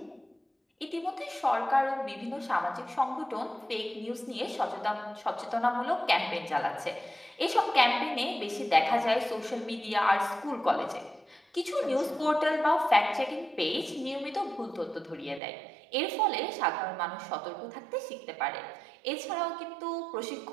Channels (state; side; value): drops out; left; at 15.4 s